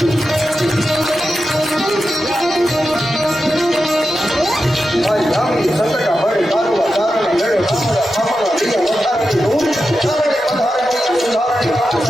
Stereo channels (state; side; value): normal; both; correlation 0.90